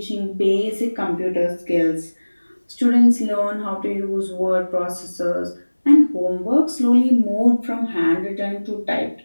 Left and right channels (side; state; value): both; inverted; correlation -1.00